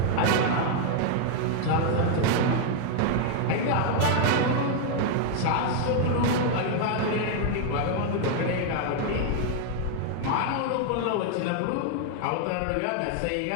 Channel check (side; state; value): both; different; correlation 0.00